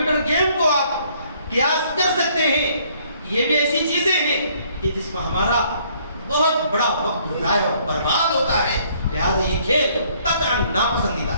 گیم کو آپ قیاس کر سکتے ہیں۔ یہ بھی ایسی چیزیں ہیں کہ جس میں ہمارا بہت بڑا وقت ضائع اور برباد ہوتا ہے، لہٰذا یہ کھیل قطعاً ناپسندیدہ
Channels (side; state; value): both; inverted; correlation -0.63